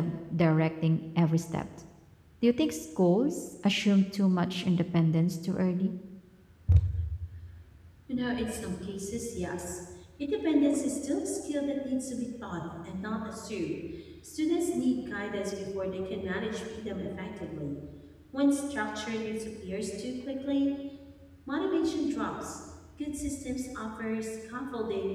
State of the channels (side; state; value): both; identical; correlation 1.00